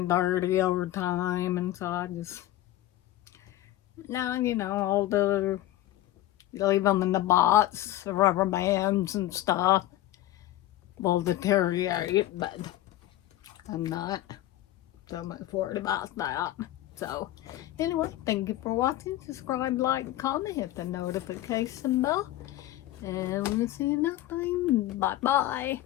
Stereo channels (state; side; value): quieter; right; 14.8 dB